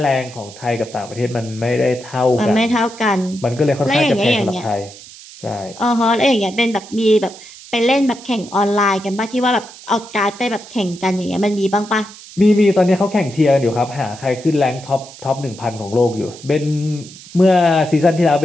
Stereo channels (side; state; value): right; noise; hiss, 18 dB below the sound